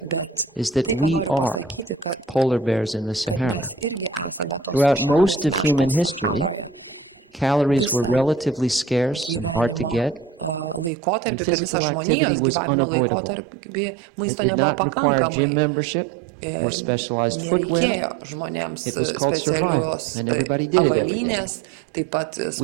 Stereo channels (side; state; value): left; drops out; at 10.9 s